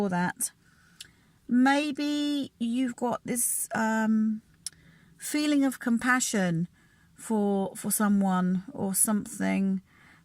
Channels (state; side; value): identical; both; correlation 1.00